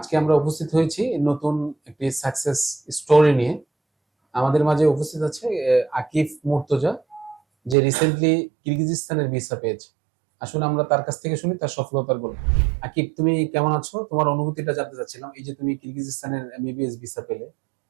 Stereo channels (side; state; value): left; drops out; at 7.8 s